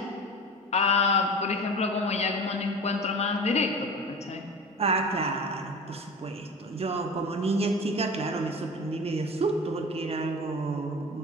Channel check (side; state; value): both; normal; correlation 0.35